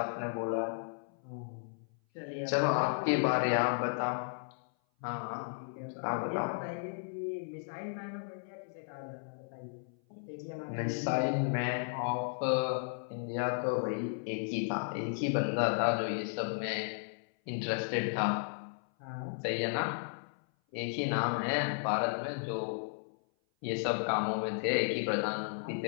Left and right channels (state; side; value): silent; right; 55 dB below the other